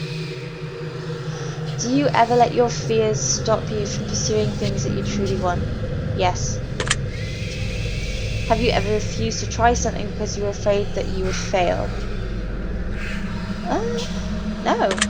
Do you ever let your fears stop you from pursuing things that you truly want? Yes. Have you ever refused to try something because you were afraid that you would fail? Uh, no.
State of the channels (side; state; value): both; identical; correlation 1.00